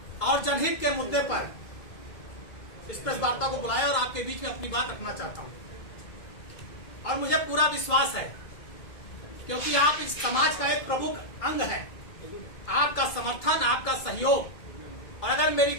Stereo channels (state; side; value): late; right; 2.2 ms